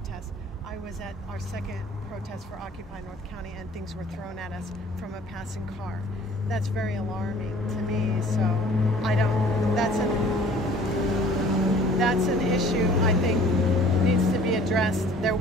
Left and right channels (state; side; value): normal; both; correlation 0.51